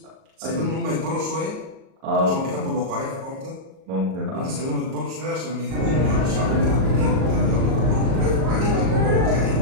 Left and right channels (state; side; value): late; left; 38 ms